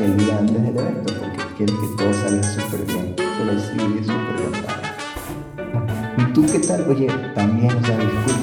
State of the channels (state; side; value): identical; both; correlation 1.00